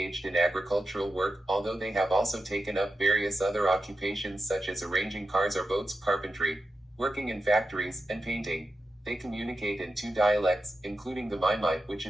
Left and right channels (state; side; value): normal; both; correlation 0.90